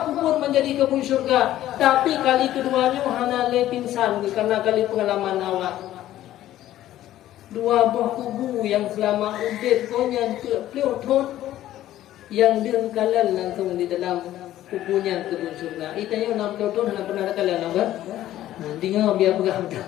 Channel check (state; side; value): quieter; right; 13.5 dB